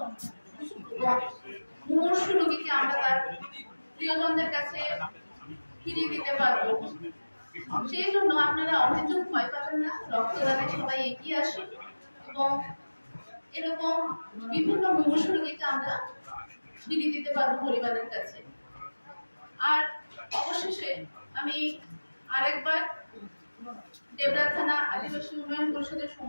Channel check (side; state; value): both; inverted; correlation -1.00